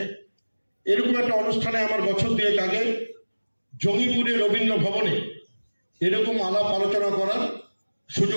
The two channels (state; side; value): inverted; both; correlation -1.00